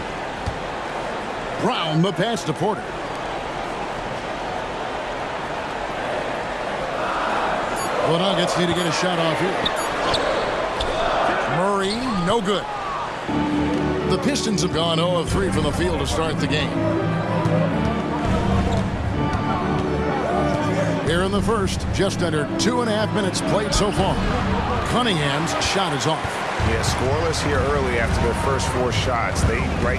Brown, the pass to Porter. The Nuggets need to get a shot off here. Murray, no good. The Pistons have gone 0 of 3 from the field to start the game. Here in the first, just under 2.5 minutes played so far. Cunningham's shot is off. Yeah, scoreless here early after their first 4 shots. They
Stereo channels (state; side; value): identical; both; correlation 1.00